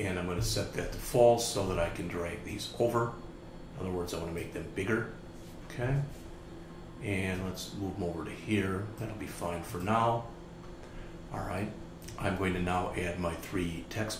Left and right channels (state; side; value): identical; both; correlation 1.00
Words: I'm going to set that to false so that I can drag these over. In other words, I want to make them bigger. Okay. And let's move them over to here. That'll be fine for now. All right. I'm going to now add my 3